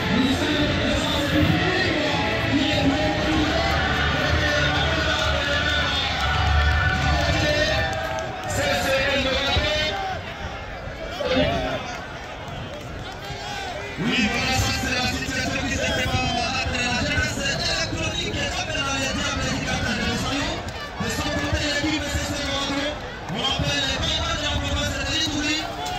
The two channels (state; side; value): identical; both; correlation 1.00